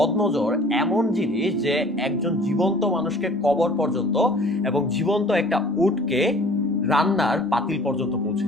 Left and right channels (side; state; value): both; normal; correlation 0.49